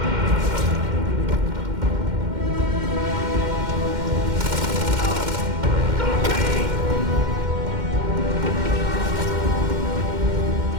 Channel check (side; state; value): left; late; 2.1 ms